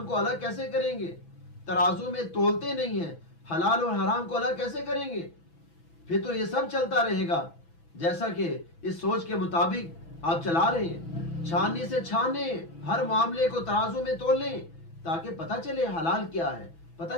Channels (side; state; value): right; late; 6.0 ms